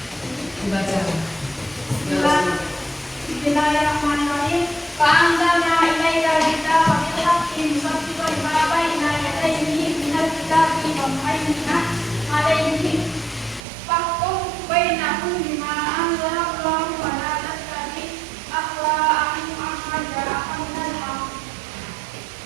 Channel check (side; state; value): left; drops out; at 13.6 s